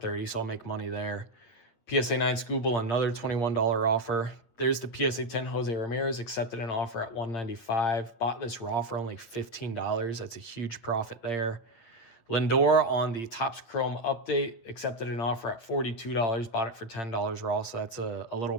so I'll make money there. PSA 9 Scooble, another $21 offer. There's the PSA 10 Jose Ramirez, accepted an offer at $195. Bought this raw for only $15. That's a huge profit there. Lindor on the Topps Chrome update, accepted an offer at $42. Bought it for $10 raw, so that's a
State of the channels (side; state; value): right; late; 9.0 ms